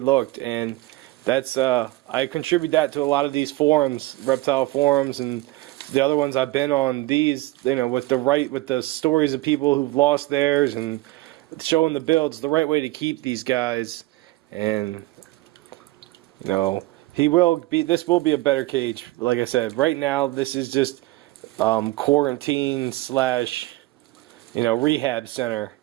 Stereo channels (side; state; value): left; quieter; 18.9 dB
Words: And that's I contribute that to a lot of these forums, reptile forums, and the other ones I've been on. These, with the stories of people who've lost theirs and showing the builds, the right way to keep these guys. And this will be a better cage. Like I said, right now this is just quarantine / rehab center.